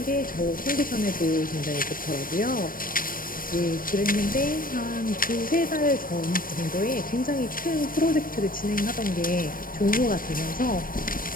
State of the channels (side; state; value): right; late; 0.41 ms